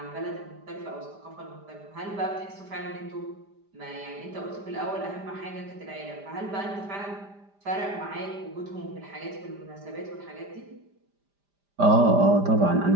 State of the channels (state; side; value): late; left; 5.0 ms